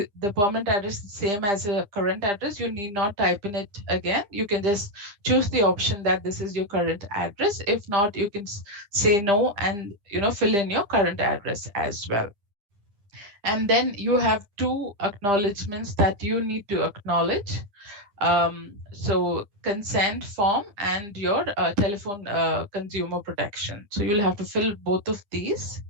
permanent address is the same as a current address, you need not type in it again. You can just choose the option that this is your current address. If not, you can say no and fill in your current address as well. And then you have two acknowledgements that you need to acknowledge. So consent form and your telephone consumer protection. So you'll have to fill both of these.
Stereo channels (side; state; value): left; late; 10 ms